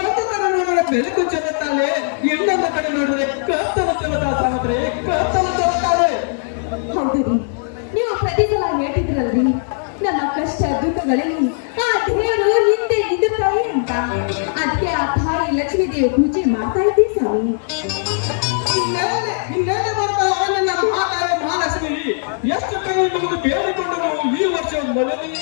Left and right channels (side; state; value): right; silent; digital silence